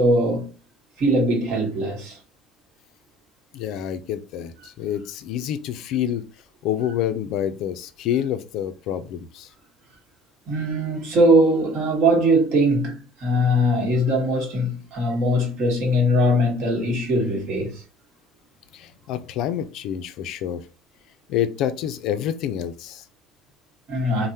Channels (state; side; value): normal; both; correlation 0.50